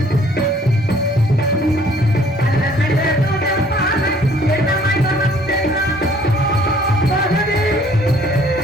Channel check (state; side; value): normal; both; correlation 0.58